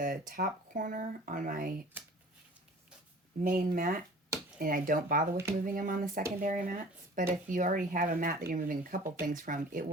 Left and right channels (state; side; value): normal; both; correlation 0.46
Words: top corner on my main mat, and I don't bother with moving them on the secondary mats. But if you already have a mat that you're moving a couple things from, it